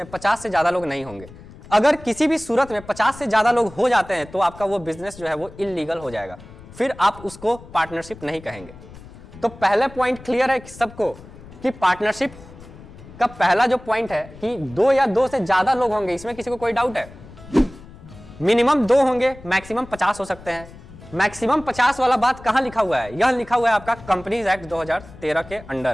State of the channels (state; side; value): noise; left; rumble, 19 dB below the sound